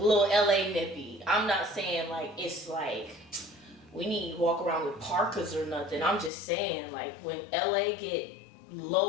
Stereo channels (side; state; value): right; drops out; at 6.3 s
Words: LA nippy. I'm not saying like it's like we need to walk around with parkas or nothing. I'm just saying like when LA get